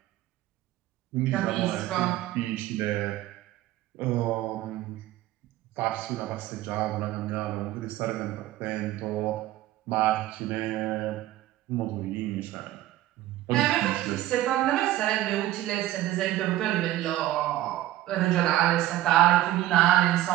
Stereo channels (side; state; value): left; quieter; 14.9 dB